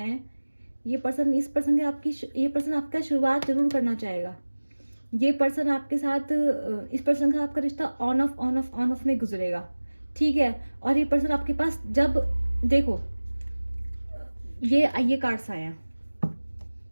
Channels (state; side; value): inverted; both; correlation -1.00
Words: ये पर्सन आपका शुरुआत जरूर करना चाहेगा। ये पर्सन आपके साथ, इस पर्सन का आपका रिश्ता ऑन ऑफ में गुजरेगा, ठीक है। और ये पर्सन आपके पास जब, देखो ये कार्ड्स आए हैं,